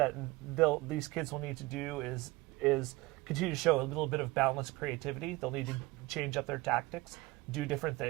these kids will need to do is continue to show a little bit of boundless creativity. They'll need to change up their tactics, do different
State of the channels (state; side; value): quieter; left; 21.0 dB